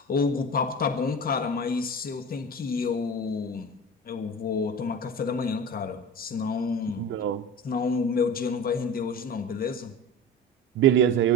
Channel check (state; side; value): normal; both; correlation 0.32